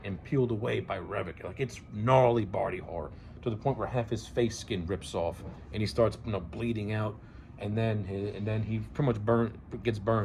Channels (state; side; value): identical; both; correlation 1.00